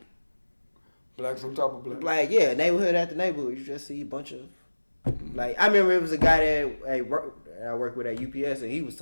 blacks on top of blacks. Like neighborhood after neighborhood. You just see a bunch of. Like I remember it was a guy that I worked with at UPS and he was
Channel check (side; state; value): both; inverted; correlation -1.00